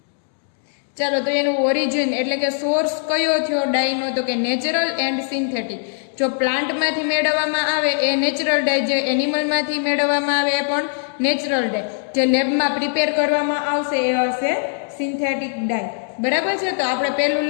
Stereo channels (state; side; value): silent; right; digital silence